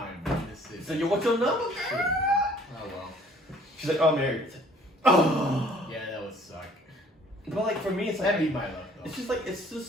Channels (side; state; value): both; normal; correlation 0.56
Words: Man. This is So, "Yo, what's your number?" shit, man. Oh well. She's like, "Oh, I'm married." It's like, oh. Yeah, that would suck. But like for me, it's like That'd be my luck, though. it's